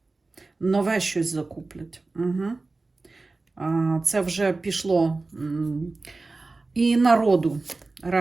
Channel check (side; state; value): left; quieter; 3.5 dB